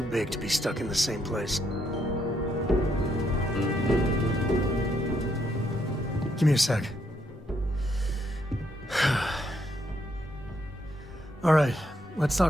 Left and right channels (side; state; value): both; normal; correlation 0.75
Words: big to be stuck in the same place. Give me a sec. All right, let's